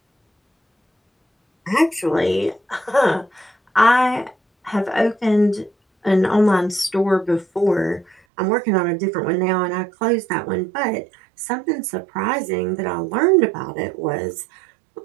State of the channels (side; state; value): left; drops out; at 8.2 s